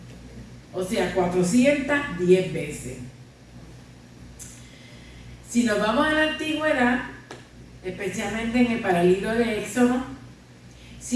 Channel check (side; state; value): both; identical; correlation 1.00